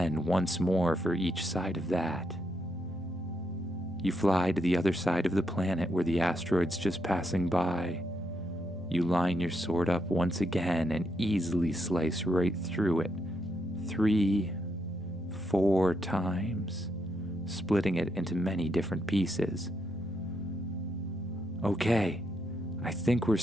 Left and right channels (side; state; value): both; normal; correlation 0.79